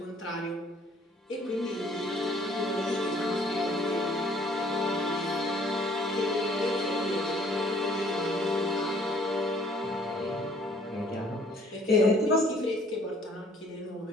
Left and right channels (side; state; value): both; normal; correlation 0.59